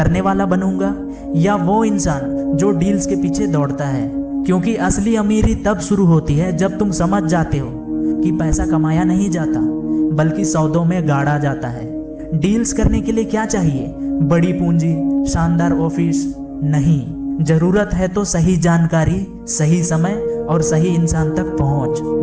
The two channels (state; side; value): identical; both; correlation 1.00